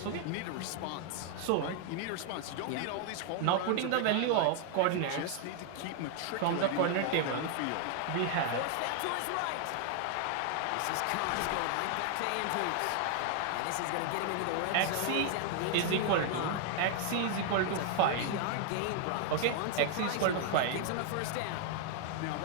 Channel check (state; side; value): different; both; correlation 0.00